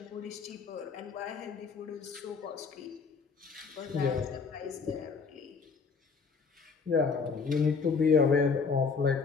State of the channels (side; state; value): right; quieter; 5.1 dB